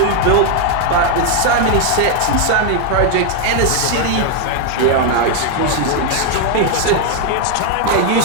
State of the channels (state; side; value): different; both; correlation 0.01